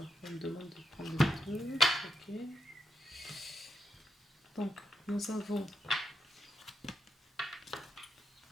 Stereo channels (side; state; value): both; normal; correlation 0.85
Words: on me demande de prendre le truc. Ok. Donc nous avons